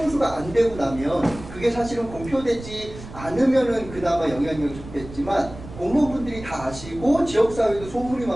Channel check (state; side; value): noise; right; rumble, 14 dB below the sound